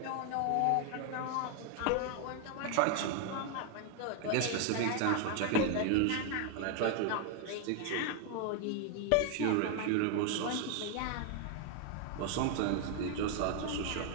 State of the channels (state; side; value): different; both; correlation 0.00